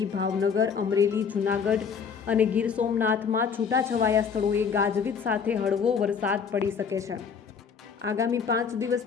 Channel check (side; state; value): right; quieter; 6.3 dB